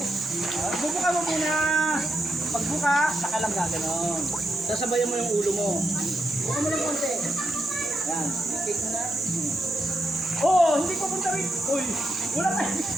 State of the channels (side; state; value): both; normal; correlation 0.84